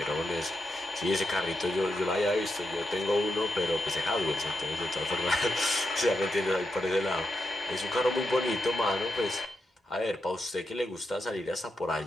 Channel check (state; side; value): normal; both; correlation 0.85